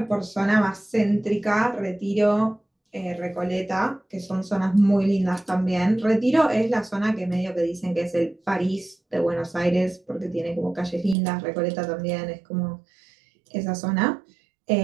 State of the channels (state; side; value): drops out; left; at 11.2 s